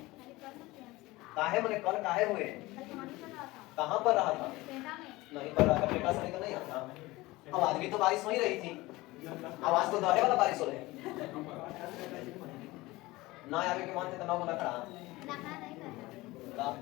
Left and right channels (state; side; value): quieter; right; 20.2 dB